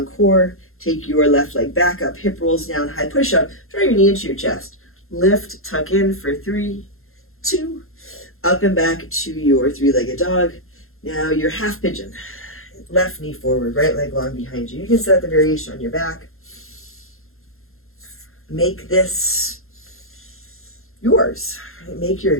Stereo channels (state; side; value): late; right; 0.61 ms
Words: core. Take your left leg back up, hip rolls down, high push up. Draw your knee into your chest. Lift, tuck in for 3, 2, up and back to your three-legged dog. Now your half pigeon. Left knee forward, right leg long behind you. You can set the variation on your back. Make this yours. Make your